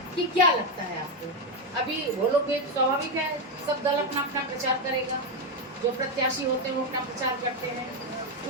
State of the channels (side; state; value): both; normal; correlation 0.06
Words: कि क्या लगता है आपको। अभी वो लोग भी स्वाभाविक है, सब दल अपना अपना प्रचार करेगा, जो प्रत्याशी होते हैं वो अपना प्रचार करते हैं।